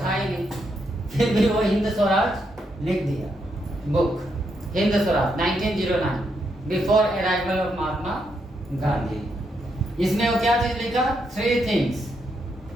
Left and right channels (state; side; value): normal; both; correlation 0.79